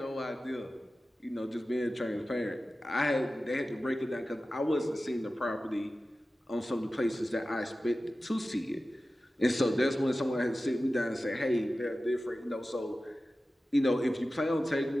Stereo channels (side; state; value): both; normal; correlation 0.95